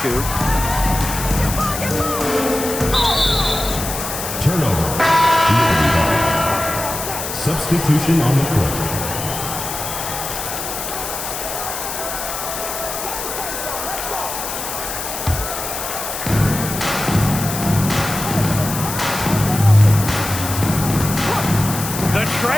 Turnover. Substitution on the court.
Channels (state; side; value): noise; left; hiss, 6 dB below the sound